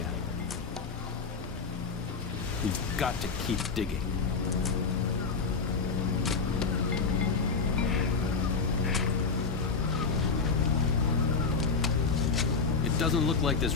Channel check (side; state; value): right; quieter; 4.9 dB